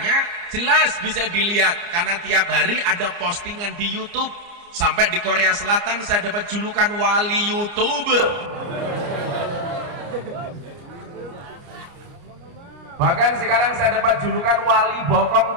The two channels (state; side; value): late; left; 29 ms